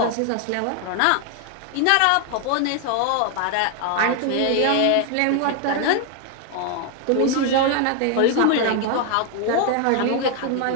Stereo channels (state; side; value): different; both; correlation 0.00